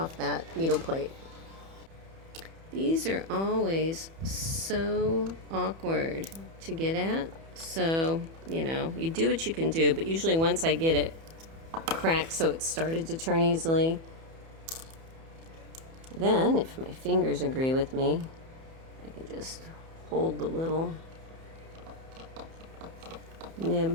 that needle plate. These are always so awkward to get at. So, you know, you do what you can do, but usually once I get it cracked so it started to turn easily, then if my fingers agree with me, I can just hold the little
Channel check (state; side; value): late; left; 31 ms